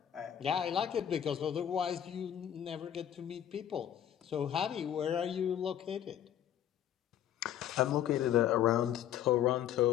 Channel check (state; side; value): quieter; right; 10.4 dB